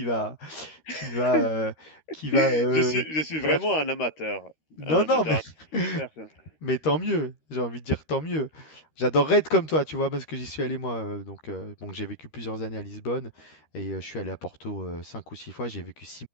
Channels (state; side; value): late; right; 13 ms